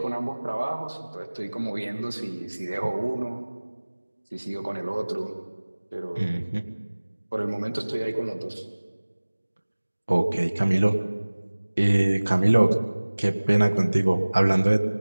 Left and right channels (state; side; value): inverted; both; correlation -1.00